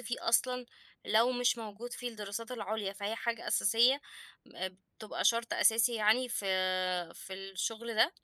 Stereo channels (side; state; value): both; identical; correlation 1.00